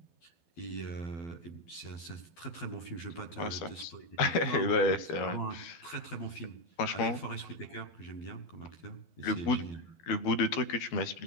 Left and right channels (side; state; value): right; late; 12 ms